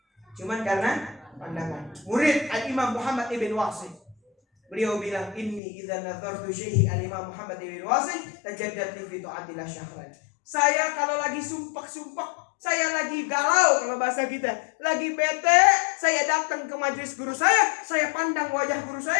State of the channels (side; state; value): right; drops out; at 5.6 s